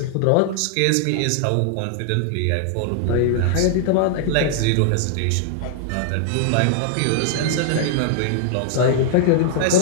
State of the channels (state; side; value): different; both; correlation -0.01